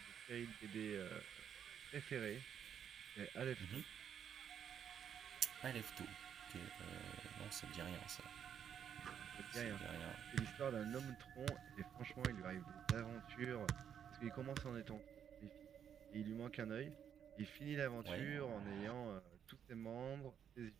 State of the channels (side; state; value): left; quieter; 8.5 dB